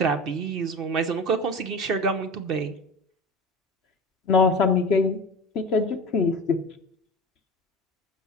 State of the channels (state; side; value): normal; both; correlation 0.33